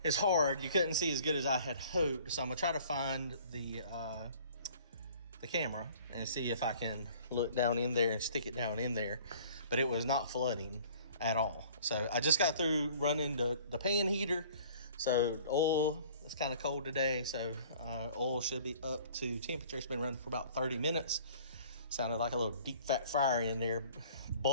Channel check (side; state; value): both; inverted; correlation -0.51